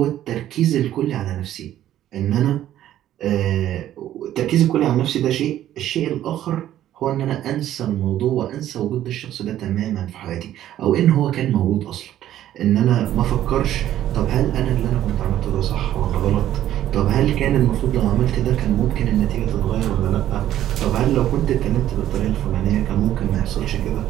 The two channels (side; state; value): left; quieter; 12.3 dB